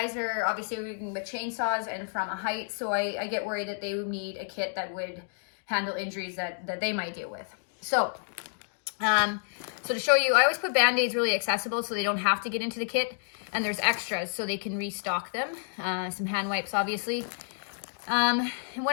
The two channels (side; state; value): right; silent; digital silence